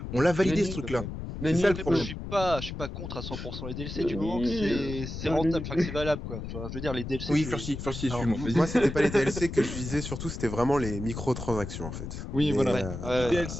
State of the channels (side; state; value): left; noise; rumble, 7 dB below the sound